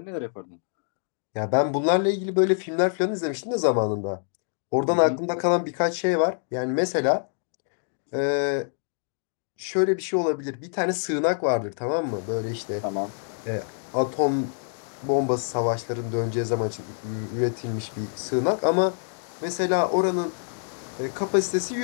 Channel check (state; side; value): silent; right; digital silence